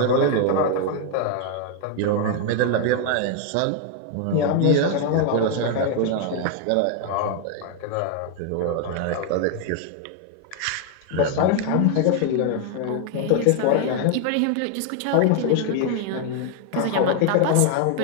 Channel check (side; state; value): both; different; correlation 0.00